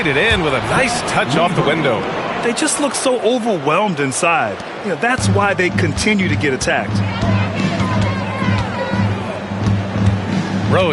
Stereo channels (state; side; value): identical; both; correlation 1.00